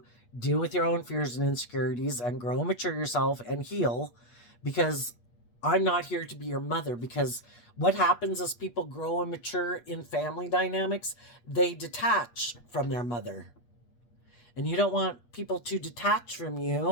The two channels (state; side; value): late; right; 8.4 ms